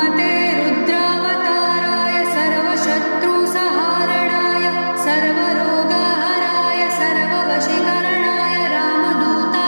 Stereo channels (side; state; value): both; inverted; correlation -1.00